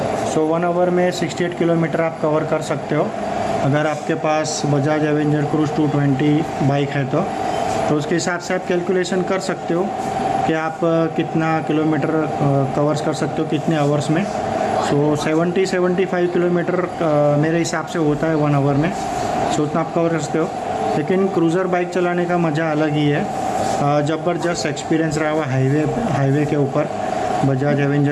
सो 1 आवर में 68 किलोमीटर आप कवर कर सकते हो अगर आपके पास बजाज एवेंजर क्रूज़ 220 बाइक है तो उसके हिसाब से आप कैलकुलेशन कर सकते हो कि आप कितना किलोमीटर कवर्स कर सकते हो कितने आवर्स में। सो 70-75 किलोमीटर मेरे हिसाब से होता है 1 आवर में, सो उतना आप कवर कर सकते हो। लेकिन क्रूज़र बाइक चलाने का मज़ा अलग ही है, ज़बरदस्त एक्सपीरियंस रहा हुआ हाईवे के ऊपर बजाज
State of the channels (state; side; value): identical; both; correlation 1.00